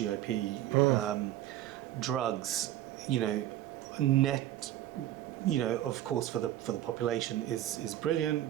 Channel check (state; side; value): quieter; left; 13.3 dB